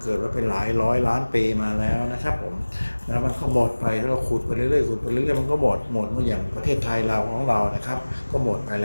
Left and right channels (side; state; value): both; inverted; correlation -1.00